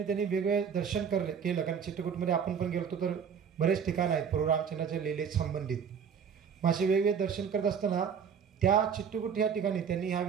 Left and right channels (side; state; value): left; quieter; 7.1 dB